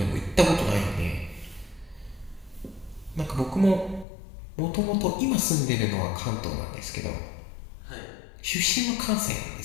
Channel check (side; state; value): right; drops out; at 4.0 s